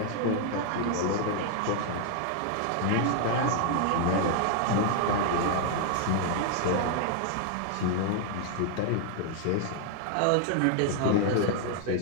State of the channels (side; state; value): both; different; correlation 0.00